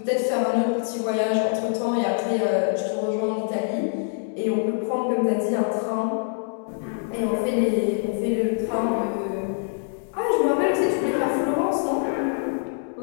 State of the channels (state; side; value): silent; right; digital silence